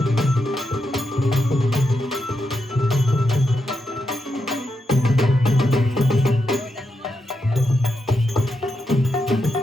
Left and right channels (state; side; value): normal; both; correlation 0.84